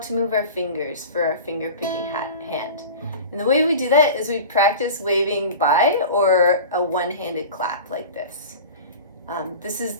move our fingers for our finger picking hand. And the way we do that is we practice waving by or a one-handed clap like this. This is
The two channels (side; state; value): both; inverted; correlation -0.35